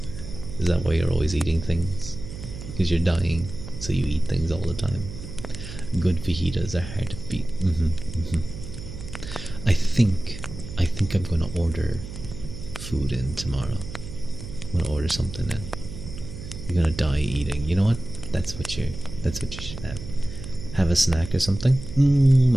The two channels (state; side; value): noise; right; hum, 11 dB below the sound